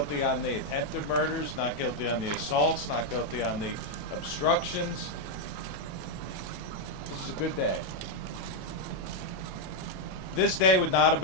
on the attempted murders, not guilty on the assaults, not guilty on the obstructions. This is a good day. This day would not have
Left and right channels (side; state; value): right; late; 28 ms